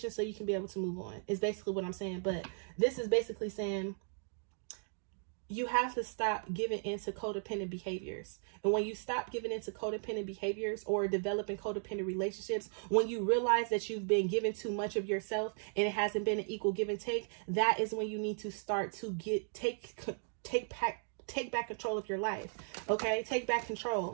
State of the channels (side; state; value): left; silent; digital silence